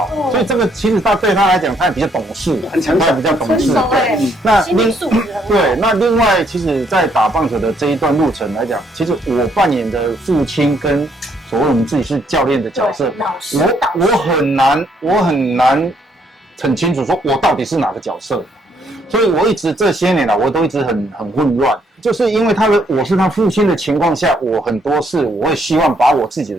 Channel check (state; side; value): normal; both; correlation 0.70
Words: 所以这个其实对他来讲，他也比较懂事，很成熟，比较懂事。那心理素质对，那另外，其实，在打棒球的这一段路程来讲，其实我扮演的父亲跟所谓我们自己是教练的角色，我很难很清楚说我到底是哪个角色，所以我一直这些年来我都一直很混乱，就是因为我是他父亲的情况下，我很多事我会希望把我自己的